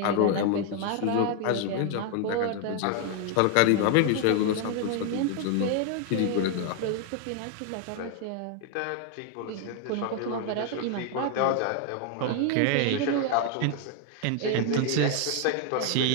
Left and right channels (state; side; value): different; both; correlation 0.00